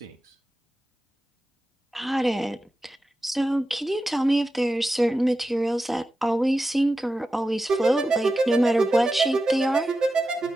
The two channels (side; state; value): both; normal; correlation 0.92